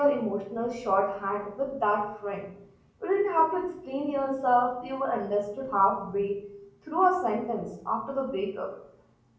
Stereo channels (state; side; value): identical; both; correlation 1.00